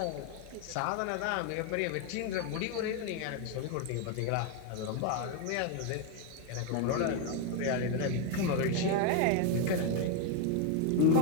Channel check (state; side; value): different; both; correlation 0.01